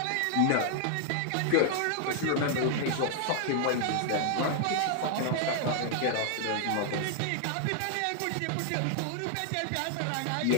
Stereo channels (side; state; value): both; different; correlation 0.00